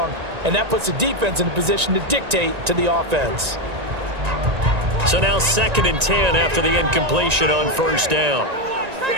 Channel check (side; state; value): left; late; 1.9 ms